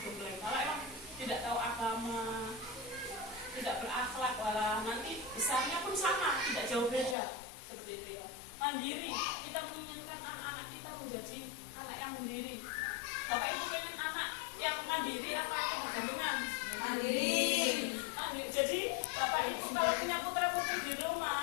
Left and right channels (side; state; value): right; drops out; at 7.2 s